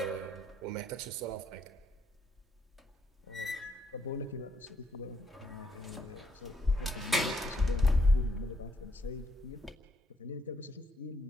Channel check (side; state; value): both; normal; correlation 0.73